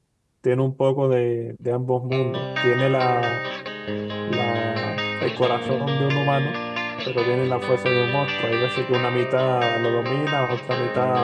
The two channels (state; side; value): identical; both; correlation 1.00